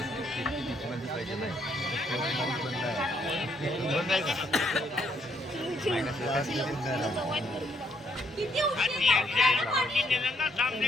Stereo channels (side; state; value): both; normal; correlation 0.71